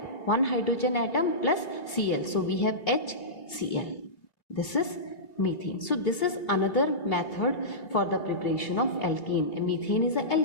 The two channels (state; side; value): late; right; 3.0 ms